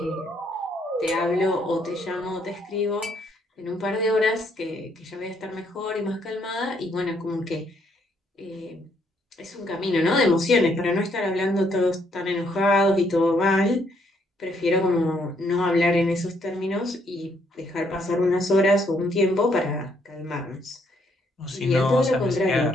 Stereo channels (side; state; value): both; normal; correlation 0.71